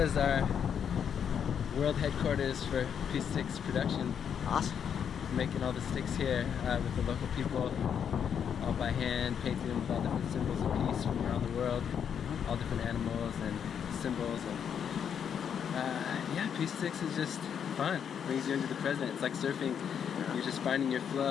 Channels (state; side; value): quieter; right; 7.9 dB